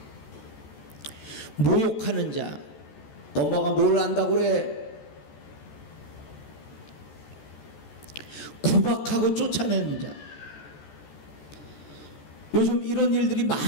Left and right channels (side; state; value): right; late; 14 ms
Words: 모욕하는 자, 엄마가 뭘 안다고 그래? 구박하고 쫓아내는 자. 요즘 이런 일들이